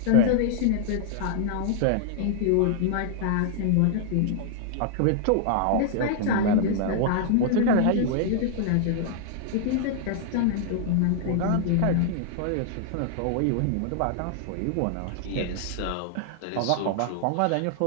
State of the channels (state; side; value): different; both; correlation -0.01